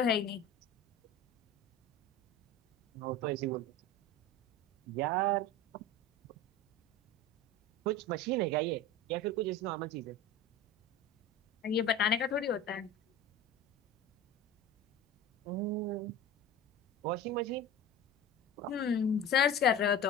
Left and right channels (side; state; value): both; normal; correlation 0.33